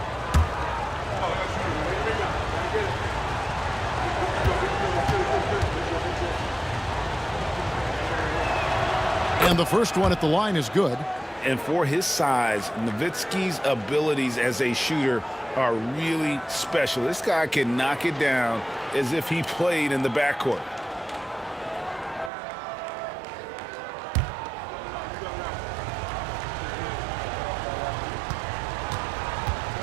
And the first one at the line is good. And for his size, Nowitzki's abilities as a shooter are really special. This guy can knock it down as if he played in the backcourt.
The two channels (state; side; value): drops out; left; at 22.3 s